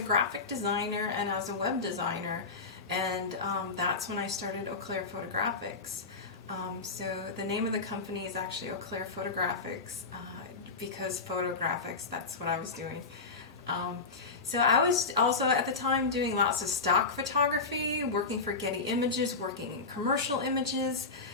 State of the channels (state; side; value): quieter; right; 4.2 dB